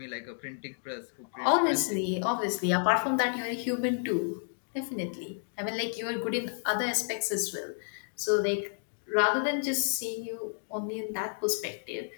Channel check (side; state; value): right; silent; digital silence